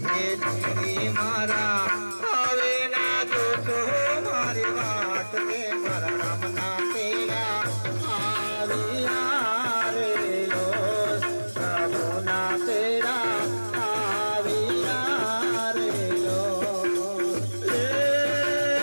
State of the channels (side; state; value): both; inverted; correlation -1.00